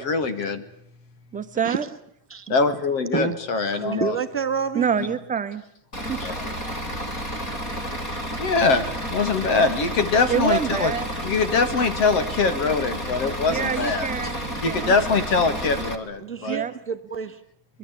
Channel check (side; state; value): right; late; 4.2 ms